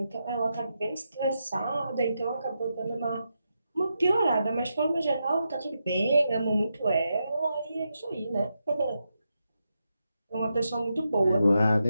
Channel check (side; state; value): both; inverted; correlation -0.85